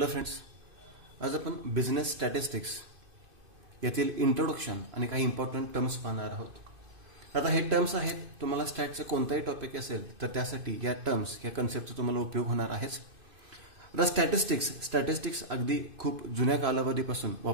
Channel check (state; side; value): late; left; 2.5 ms